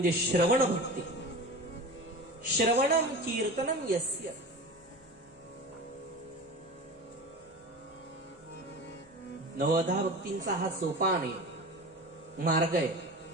श्रवण भक्ती. श्रवणम कीर्तनम यस्य. नवदा भक्तींचा हा सोपान आहे, मार्ग आहे.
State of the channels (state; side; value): noise; left; rumble, 30 dB below the sound